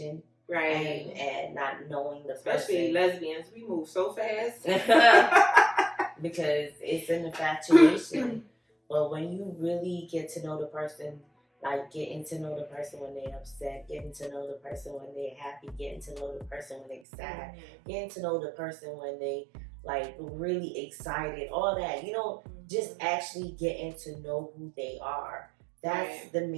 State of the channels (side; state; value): left; drops out; at 17.0 s